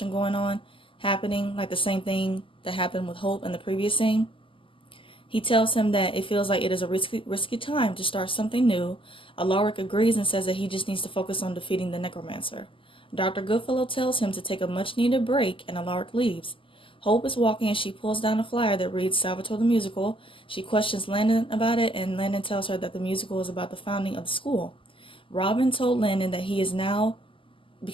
going on, happening, like the same thing that happened with Hope in the previous scene. He tells him that it feels like it is a risky time to start something new. Alaric agrees and says that he just needs to focus on defeating the necromancer. Dr. Goodfellow tells him to take a much-needed break, and Alaric leaves. Hope is walking and she pulls down a flyer that reads Salvatore the Musical. She questions Landon about it, and Landon tells her that the musical is about the founding of the school. Robin told Landon that he is now,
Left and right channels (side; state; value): right; late; 0.25 ms